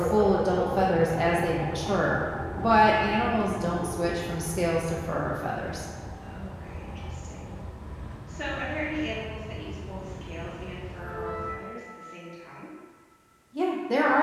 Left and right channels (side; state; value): both; identical; correlation 1.00